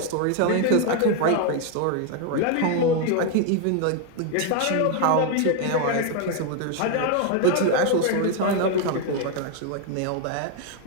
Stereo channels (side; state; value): both; different; correlation 0.01